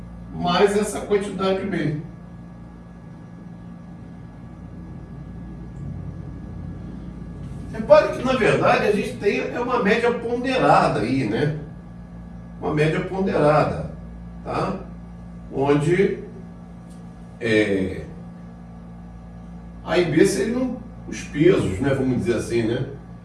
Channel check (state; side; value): identical; both; correlation 1.00